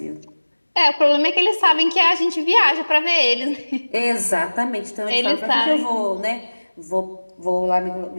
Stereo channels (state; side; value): inverted; both; correlation -1.00